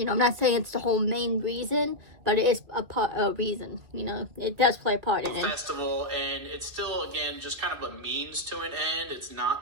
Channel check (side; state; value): left; late; 2.6 ms